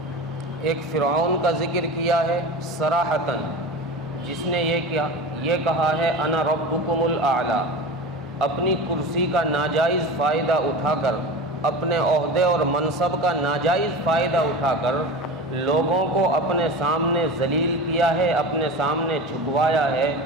ایک فرعون کا ذکر کیا ہے صراحتاً، جس نے یہ کہا ہے انا ربکم الاعلی، اپنی کرسی کا ناجائز فائدہ اٹھا کر، اپنے عہدے اور منصب کا ناجائز فائدہ اٹھا کر لوگوں کو اپنے سامنے ذلیل کیا ہے، اپنے سامنے جھکوایا ہے،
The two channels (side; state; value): both; normal; correlation 0.30